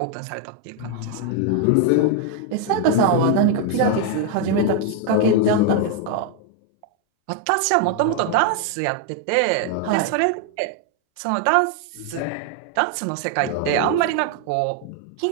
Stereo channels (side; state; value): both; different; correlation 0.01